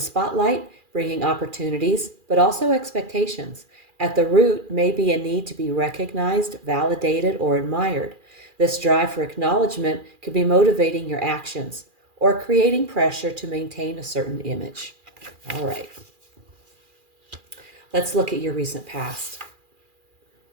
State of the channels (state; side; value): late; left; 2.4 ms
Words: bringing opportunities, but also expectations. At the root may be a need to be recognized, validated, or admired. This drive for acknowledgement could be motivating your actions or creating pressure to maintain a certain image. All right. Let's look at your recent past.